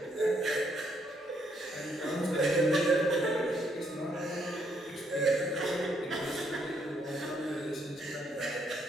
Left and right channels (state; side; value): normal; both; correlation 0.72